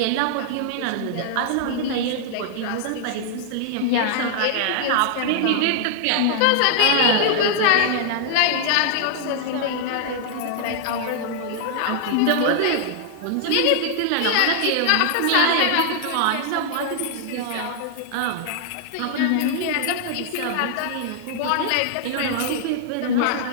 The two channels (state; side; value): different; both; correlation -0.01